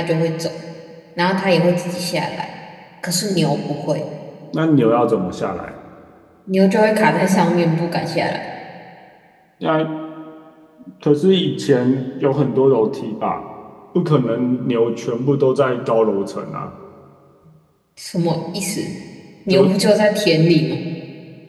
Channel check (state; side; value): identical; both; correlation 1.00